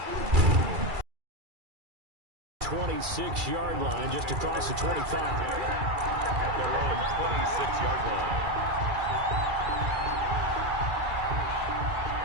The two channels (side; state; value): left; late; 2.3 ms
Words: 26-yard line just across the 25. At their own 26-yard